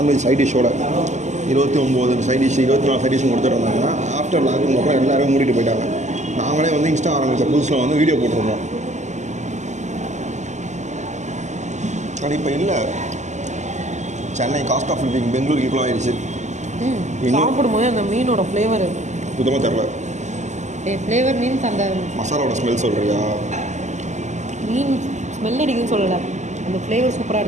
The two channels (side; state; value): left; late; 0.34 ms